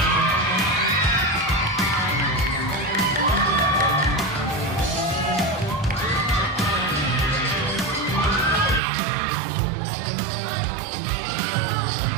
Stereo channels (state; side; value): drops out; left; at 8.8 s